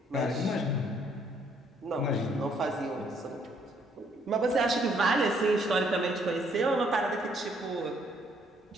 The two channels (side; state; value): both; normal; correlation 0.67